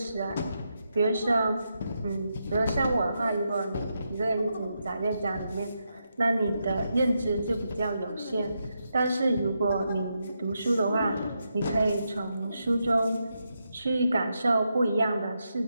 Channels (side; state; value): both; inverted; correlation -0.84